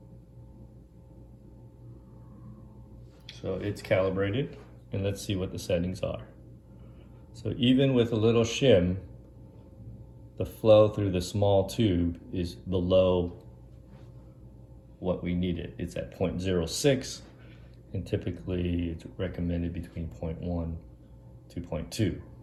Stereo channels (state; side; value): identical; both; correlation 1.00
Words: So it's calibrated, and let's see what the settings are. So even with a little shim, the flow through the small tube is below what we needed. It's at 0.06, and typically it's recommended between 0.1 to 0.2.